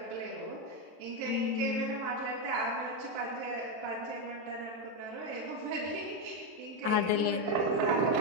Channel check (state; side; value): late; left; 23 ms